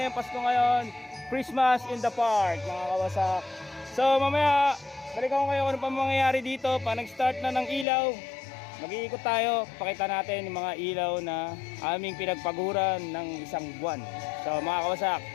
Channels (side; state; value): right; drops out; at 7.9 s